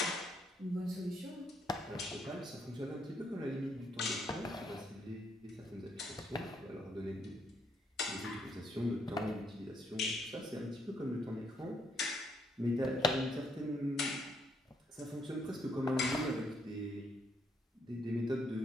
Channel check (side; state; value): both; normal; correlation 0.73